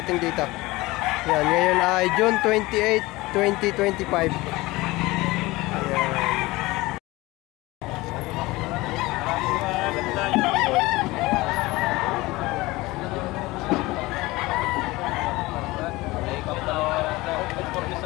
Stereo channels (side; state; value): right; quieter; 20.6 dB